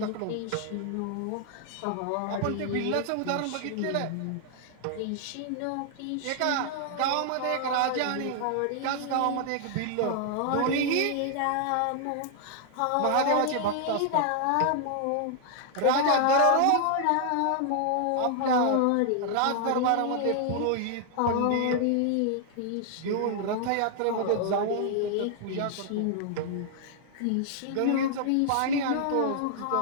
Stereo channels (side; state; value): both; different; correlation 0.00